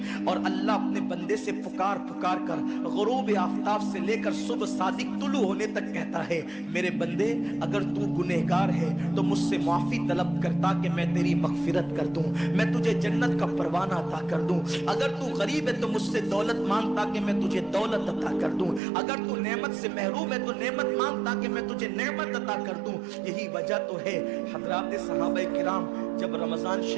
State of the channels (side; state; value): left; drops out; at 18.8 s